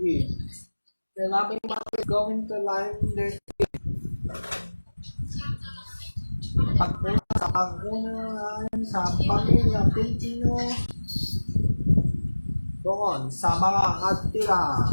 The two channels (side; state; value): both; inverted; correlation -1.00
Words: The loving mother going to line their teeth. Pag-unahan sa pamilya Pilipino doon sa mga atira.